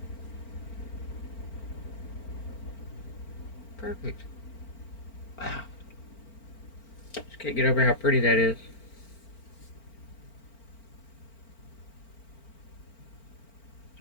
Perfect. Wow. Just can't get over how pretty that is.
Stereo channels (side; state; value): right; late; 4.4 ms